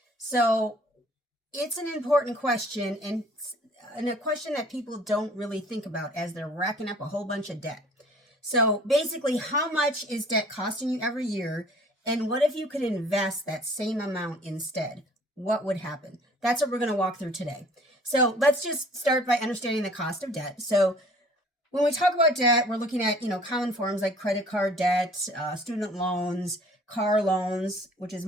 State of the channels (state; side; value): normal; both; correlation 0.52